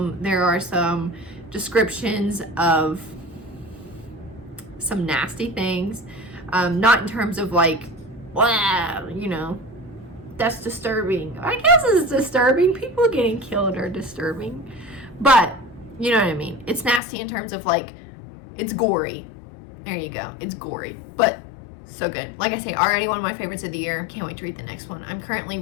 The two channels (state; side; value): drops out; right; at 17.0 s